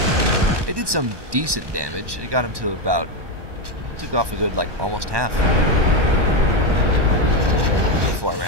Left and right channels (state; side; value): late; left; 1.1 ms